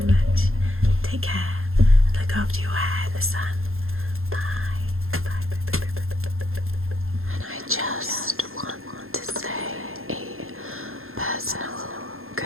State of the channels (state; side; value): late; left; 0.61 ms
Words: much. Take care and look after your hair in the sun. Bye. Bye. Bye. Bye. Bye. Bye. Bye. Bye. And I just want to say a personal